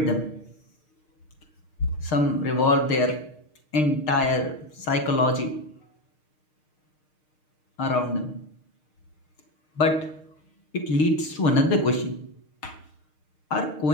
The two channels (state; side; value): late; right; 6.5 ms